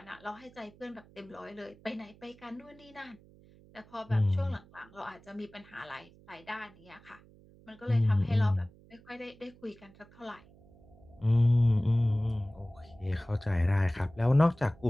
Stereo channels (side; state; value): right; noise; hum, 25 dB below the sound